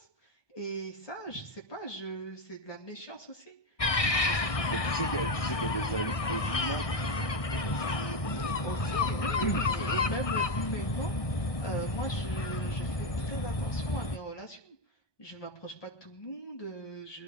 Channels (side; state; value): right; late; 1.6 ms